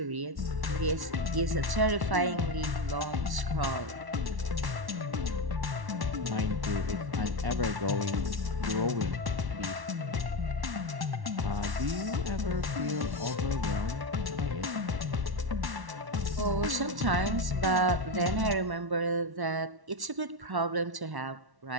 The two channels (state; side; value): late; left; 1.1 ms